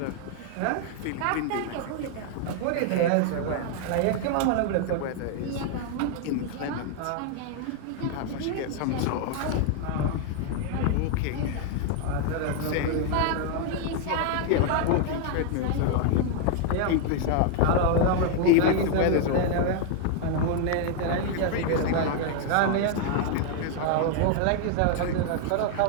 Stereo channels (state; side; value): different; both; correlation 0.00